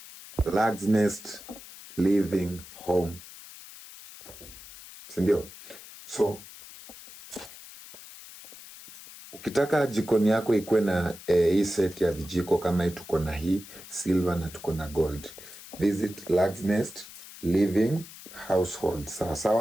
Lag's Nest Living Home, sindio? So ukitaka jikoni yako ikuwe na hii set ya vijiko kama hii, tuko na hii silver na tuko na gold, visit Lag's Nest Living Household.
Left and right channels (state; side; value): noise; left; hiss, 16 dB below the sound